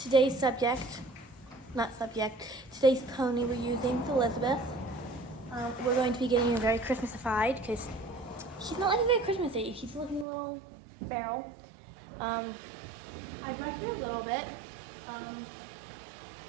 today's today's pony we're using is Elizabeth. We're going to be getting her very Christmasified because she's not looking very Christmassy. She's looking a little feral. I brushed her a little bit.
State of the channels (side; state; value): left; drops out; at 10.2 s